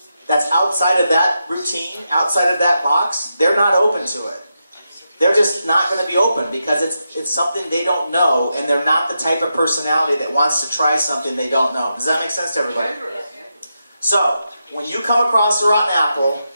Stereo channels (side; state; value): both; inverted; correlation -0.86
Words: that's outside of that routine, outside of that box, they're not open to it. They're just not going to be open because it's something they don't know, and they're not the type of personality that wants to try something they don't know. Does that make sense to everybody? So, when you come across a rotten apple,